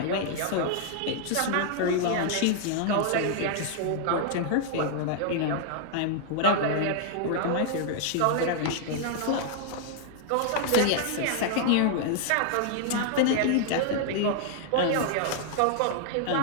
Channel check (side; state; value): both; different; correlation 0.00